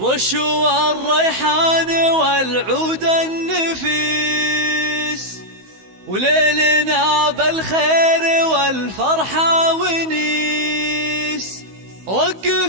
الريحان والعود النفيس، وليلنا بالخير والفرحة ونيس.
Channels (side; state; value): left; late; 16 ms